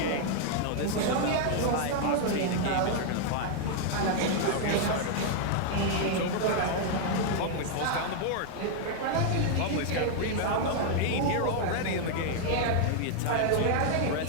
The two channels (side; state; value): both; different; correlation 0.00